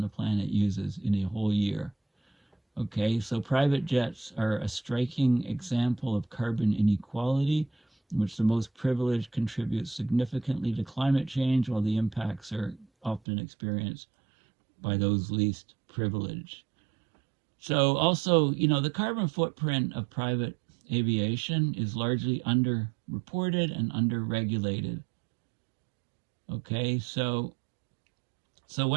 the planet uses in a whole year. Okay, so private jets are a striking example of carbon inequality, in which the most privileged contribute significantly to climate change, while the impacts are often experienced by those least privileged. So also, the carbon footprint of private aviation is largely underreported and underregulated. Okay, so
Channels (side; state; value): left; drops out; at 13.2 s